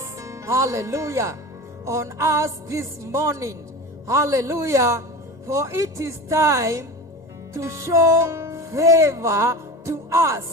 Hallelujah. On us this morning. Hallelujah. For it is time to show favor to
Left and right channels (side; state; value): left; late; 2.0 ms